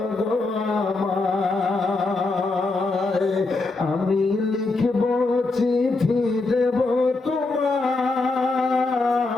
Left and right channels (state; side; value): quieter; right; 3.4 dB